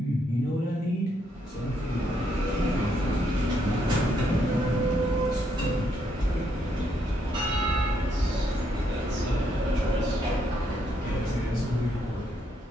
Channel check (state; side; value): normal; both; correlation 0.75